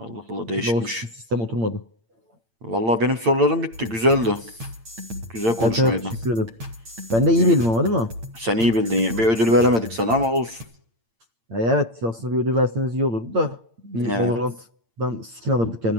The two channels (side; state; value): left; late; 8.8 ms